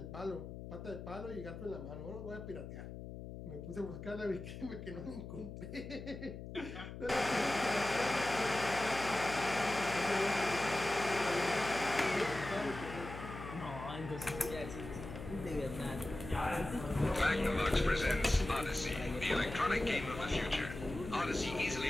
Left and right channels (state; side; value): noise; left; hum, 10 dB below the sound